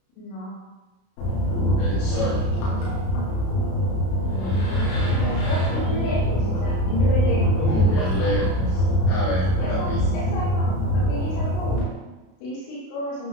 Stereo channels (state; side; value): late; right; 32 ms